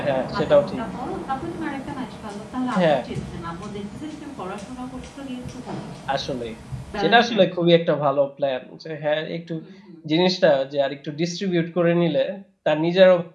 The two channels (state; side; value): identical; both; correlation 1.00